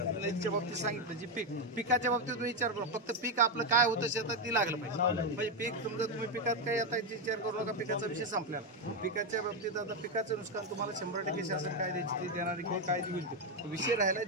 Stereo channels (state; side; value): normal; both; correlation 0.07